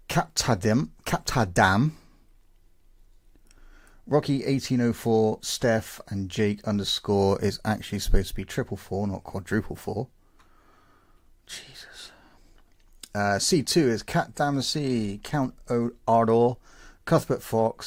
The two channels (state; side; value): identical; both; correlation 1.00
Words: Captadam, Rocky 1804, Steph, and Jake underscore is actually supposed to be 444, not quadruple four. Jesus. C2 is Cat Damacy, Count Ardor, Cuthbert